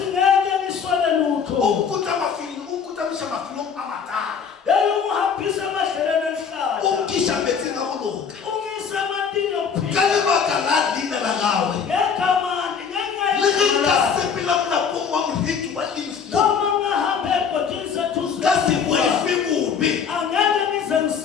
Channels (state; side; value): quieter; right; 6.6 dB